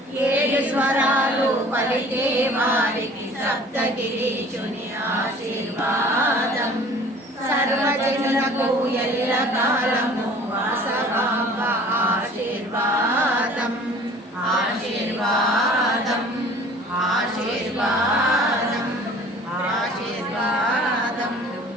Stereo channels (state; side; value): normal; both; correlation 0.48